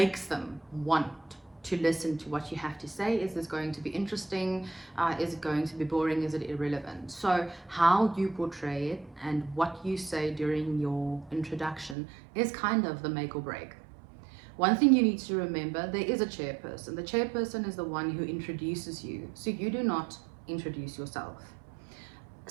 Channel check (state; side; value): drops out; left; at 12.0 s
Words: them want to listen to what you have to say. Is this going to be interesting? Is it going to be boring? Is it irrelevant? So how you portray it and what you say during your introduction is kind of the make or break. One thing you need to remember, there is a chairperson. The chairperson is the one who introduces you, so you do not introduce yourself.